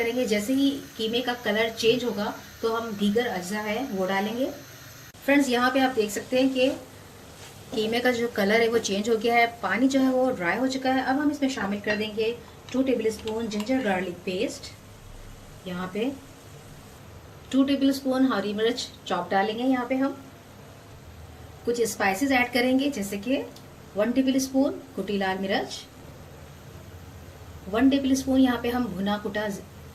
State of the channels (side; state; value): both; identical; correlation 1.00